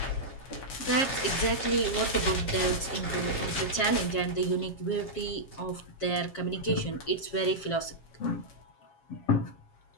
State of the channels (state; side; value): late; right; 7.4 ms